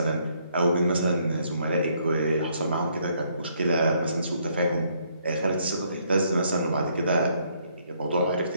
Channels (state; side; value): inverted; both; correlation -0.69